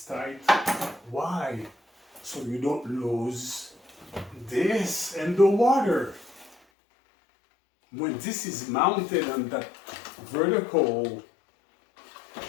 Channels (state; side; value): drops out; right; at 6.6 s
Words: tight. Why? So you don't lose this in the water. When this is mounted on that vertical